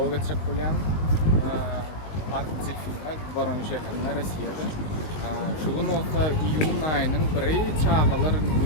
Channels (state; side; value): late; right; 19 ms